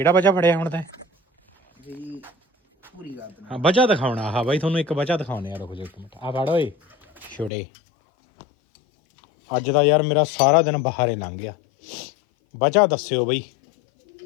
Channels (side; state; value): right; drops out; at 7.5 s